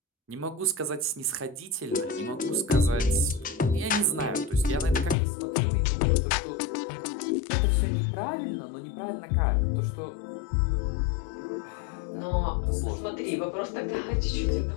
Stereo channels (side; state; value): right; drops out; at 5.2 s